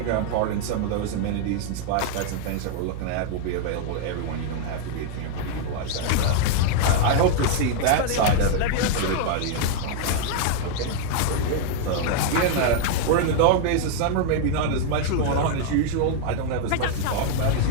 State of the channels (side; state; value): both; different; correlation 0.00